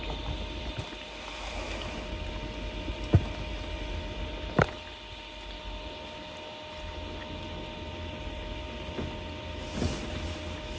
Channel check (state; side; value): identical; both; correlation 1.00